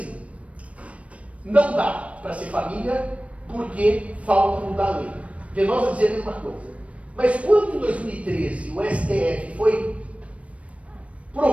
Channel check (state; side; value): late; left; 0.064 ms